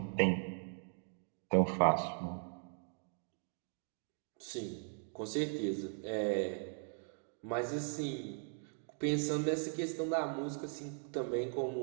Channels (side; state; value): left; silent; 52 dB below the other